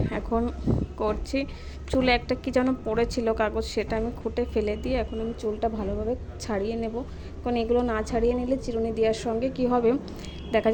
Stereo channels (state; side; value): identical; both; correlation 1.00